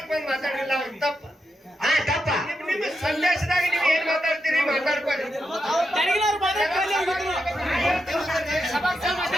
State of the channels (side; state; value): both; normal; correlation 0.86